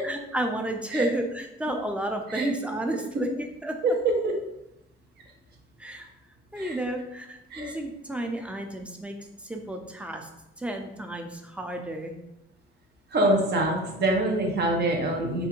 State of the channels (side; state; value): both; normal; correlation 0.45